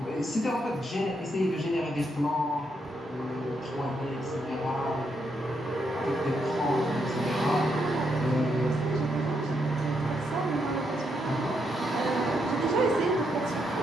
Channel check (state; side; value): normal; both; correlation 0.79